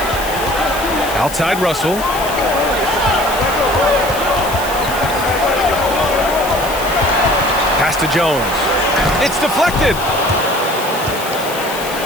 Outside Russell. Pass to Jones. It's deflected.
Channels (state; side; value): noise; left; hiss, 11 dB below the sound